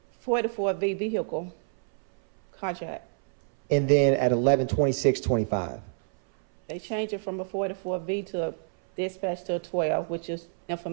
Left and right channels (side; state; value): left; silent; 60 dB below the other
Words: 44V vehicle carjack. And then at 11:26:25. They changed it from a 44V to a dispatch to a 12, which is